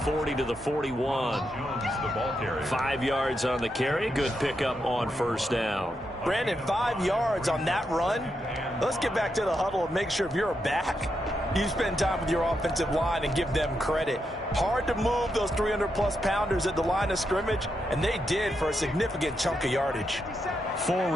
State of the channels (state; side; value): normal; both; correlation 0.83